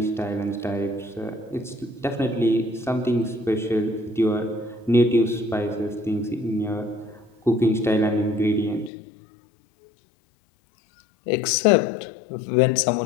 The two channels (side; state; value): right; drops out; at 8.9 s